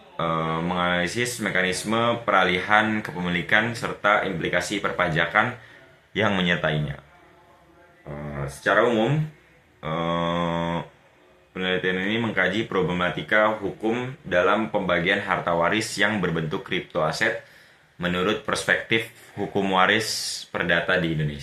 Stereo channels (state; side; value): identical; both; correlation 1.00